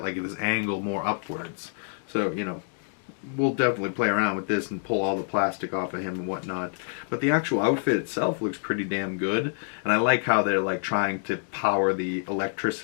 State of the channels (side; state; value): right; silent; digital silence